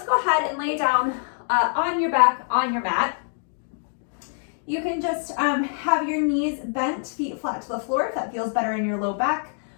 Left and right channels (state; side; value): silent; right; 62 dB below the other